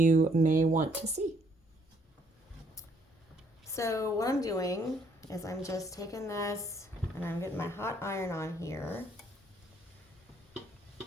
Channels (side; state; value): both; normal; correlation 0.67